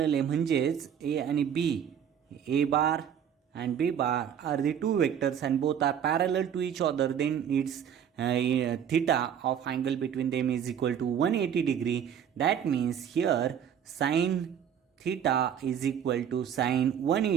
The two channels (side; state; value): left; quieter; 8.6 dB